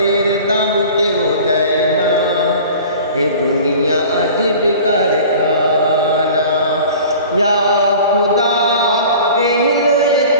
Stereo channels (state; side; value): inverted; both; correlation -0.43